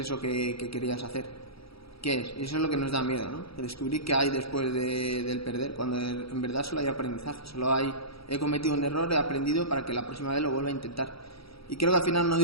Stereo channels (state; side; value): late; right; 0.76 ms